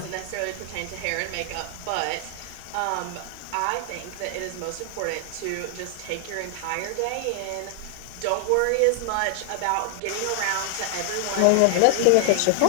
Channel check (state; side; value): different; both; correlation 0.00